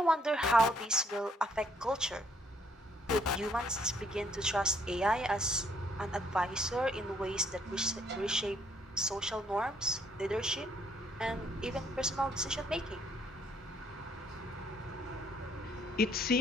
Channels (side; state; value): both; normal; correlation 0.67